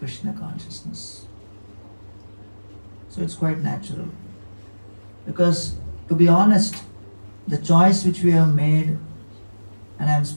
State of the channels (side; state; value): both; inverted; correlation -1.00